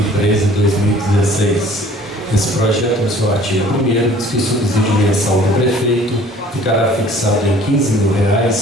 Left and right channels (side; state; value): both; normal; correlation 0.52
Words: Esse projeto, no seu artigo 1º, diz que o subsídio mensal do prefeito ficará fixado em